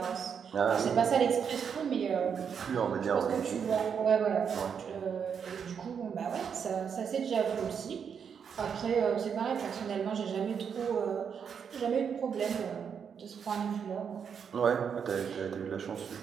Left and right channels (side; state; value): left; quieter; 7.1 dB